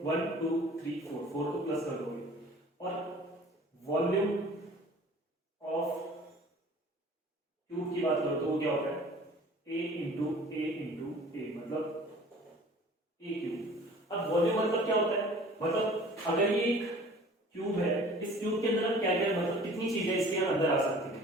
1 2 3 4 4 को प्लस कर दोगे, और वॉल्यूम ऑफ क्यूब की बात करो तो वो क्या होता है A इंटू A मतलब A क्यूब। अब वॉल्यूम मतलब क्या होता है, मतलब अगर ये क्यूब है, इस क्यूब के अंदर क्या क्या मतलब कितनी चीजें इसके अंदर आ सकती है,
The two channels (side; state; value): both; normal; correlation 0.47